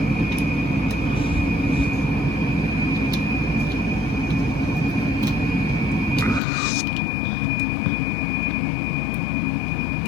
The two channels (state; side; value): drops out; right; at 6.4 s